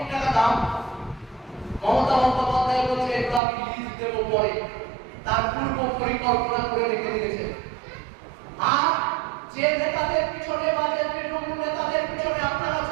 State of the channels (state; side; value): drops out; left; at 3.4 s